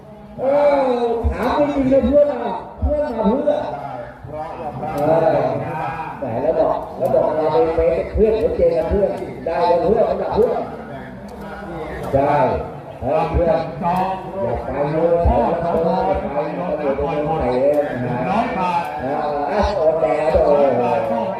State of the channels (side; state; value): both; identical; correlation 1.00